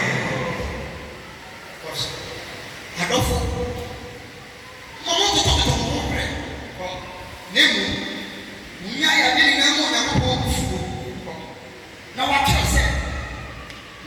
adɔfo ma montotɔtotɔ mo ho berɛ na mmom monya yɛade nyinaa ma onyankopɔn bufuo na wakyerɛ sɛ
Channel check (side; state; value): both; identical; correlation 1.00